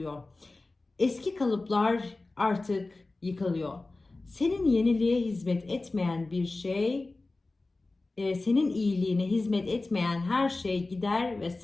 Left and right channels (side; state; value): right; quieter; 3.2 dB